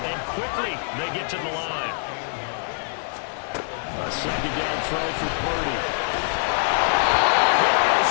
And quickly, they get to the line. A second down throw for Purdy.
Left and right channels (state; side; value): silent; right; digital silence